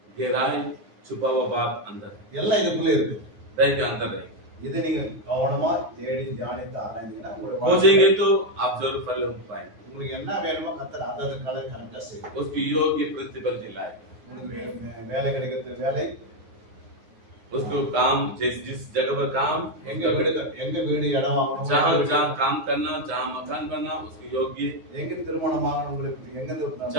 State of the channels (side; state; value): left; late; 9.7 ms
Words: गहराई छुपा हुआ बात अंदर है, எல்லாம் இதுக்குள்ள இருக்கு. हृदय के अंदर है। இதை நீங்க கவனமா தேடி தியானித்து ஆராய்ந்தீங்கன்னா உங்களுடைய खोजेंगे तो आप जरूर फल पाएंगे। உங்களுக்கு என்ன வேணுமோ கர்த்தர் அதை கலர் கரெக்டா செய்யும். उसकी योग्य प्रतिफल दिलाए, உங்களுக்கு வேலை கிடைக்கிறது வேலை, उसको काम जिस जगह पर काम எங்க வீடு இடம் வாங்கணும், जहाँ जहाँ काम करना, जहाँ मकान बनना उसकी योग्य, எங்க திருமணம் வாங்கணும், உங்களுக்கு எங்க